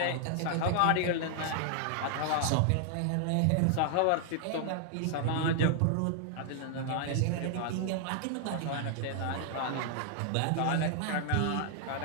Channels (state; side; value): different; both; correlation 0.00